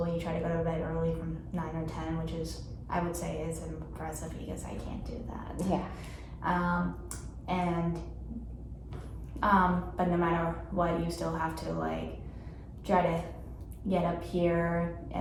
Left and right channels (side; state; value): both; identical; correlation 1.00